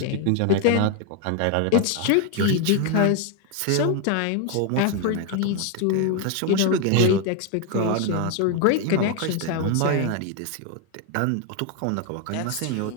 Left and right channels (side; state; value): both; different; correlation 0.01